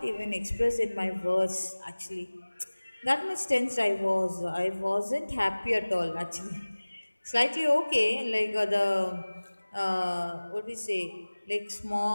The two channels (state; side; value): inverted; both; correlation -1.00